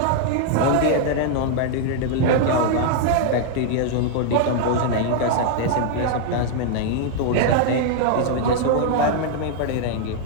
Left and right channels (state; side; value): different; both; correlation -0.01